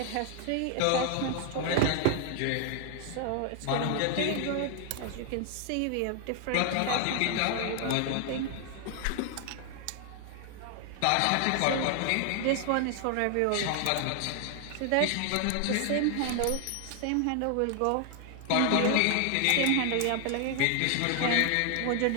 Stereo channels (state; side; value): different; both; correlation 0.00